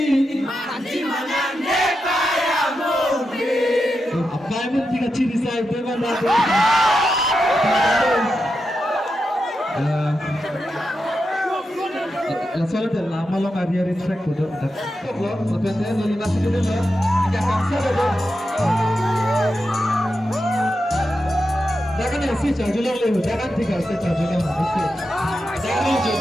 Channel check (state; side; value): normal; both; correlation 0.88